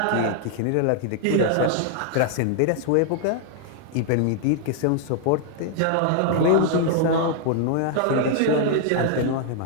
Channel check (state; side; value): different; both; correlation 0.00